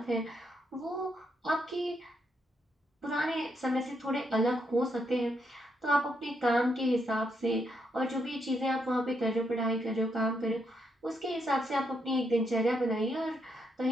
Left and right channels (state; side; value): normal; both; correlation 0.78